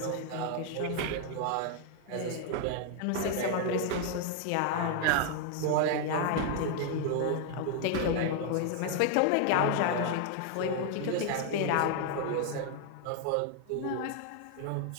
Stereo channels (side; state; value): both; different; correlation 0.00